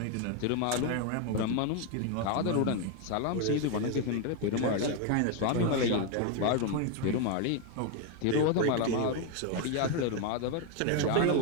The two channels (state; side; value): different; both; correlation 0.02